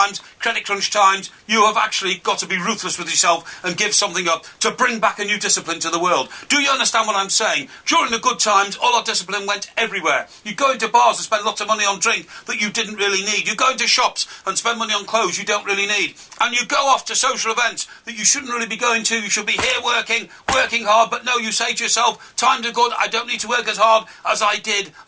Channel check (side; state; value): both; identical; correlation 1.00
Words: credit crunch times, you have actually got to be ruthless with yourself and give something up to bring back a new discipline to the world. Do you understand what I'm saying? During the good times, all our discipline went everywhere. You go into bars and spend lots of money on drink that you didn't really need. You go into shops and spend money on clothes you don't really need. And you go off to social events that you shouldn't really be going to. You should be here working hard. But no, you say to yourself, times are good, I don't need to work as hard as I did